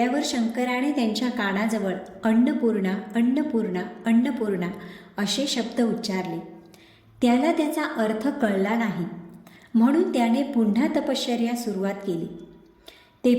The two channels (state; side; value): identical; both; correlation 1.00